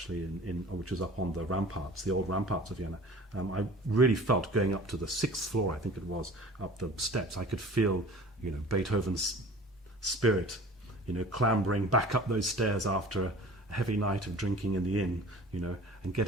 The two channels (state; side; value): normal; both; correlation 0.43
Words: which is up on the ramparts, the old ramparts of Vienna, I really felt going up to the 6th floor, I think it was, up the steps, I could feel, Beethoven's spirit, clambering back up those stairs after a heavy night of drinking in the inn, and